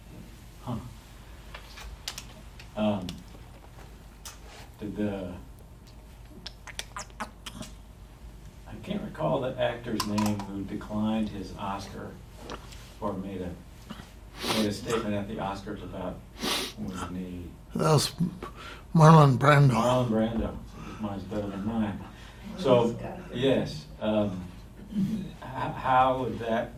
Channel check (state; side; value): identical; both; correlation 1.00